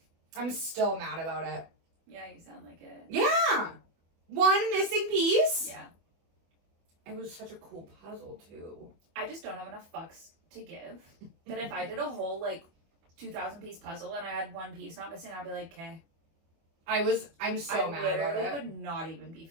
I'm still mad about it. Yeah, you sound like it. Yeah. One missing piece. Yeah. It was such a cool puzzle too. I just don't have enough fucks to give. That if I did a whole like 2,000 piece puzzle and I had one piece not missing, I'd be like, okay. I'm so mad about it. I literally would not even be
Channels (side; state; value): left; late; 24 ms